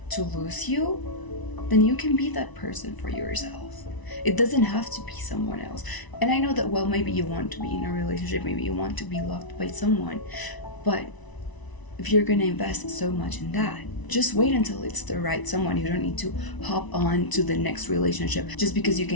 to lose you, then you can be that person for yourself. It doesn't have to be someone else. And I know that, well, maybe you want to be in a relationship, maybe you want to be loved by someone, but if you're gonna invest so much in that, just wait until it's the right someone. You don't need to hop on to the next relationship just because you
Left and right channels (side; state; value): right; late; 1.0 ms